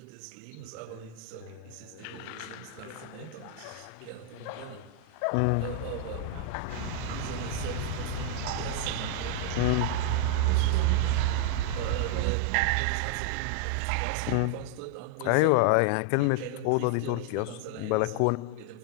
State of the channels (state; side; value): different; both; correlation 0.00